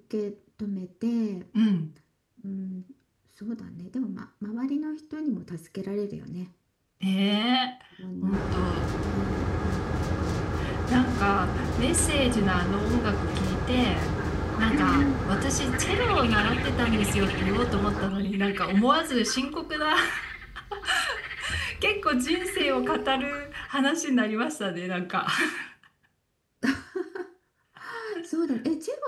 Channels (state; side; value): identical; both; correlation 1.00